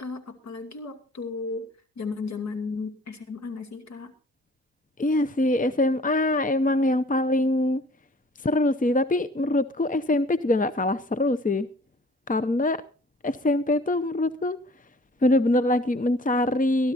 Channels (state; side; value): normal; both; correlation 0.52